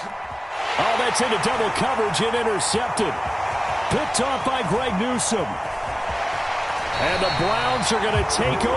that's into double coverage and intercepted. Picked off by Greg Newsome. And the Browns are going to take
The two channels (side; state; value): both; identical; correlation 1.00